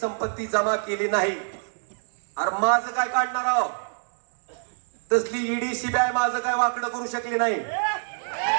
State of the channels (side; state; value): left; silent; digital silence